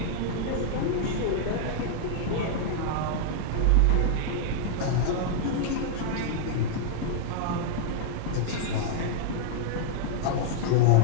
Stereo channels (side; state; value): both; different; correlation -0.01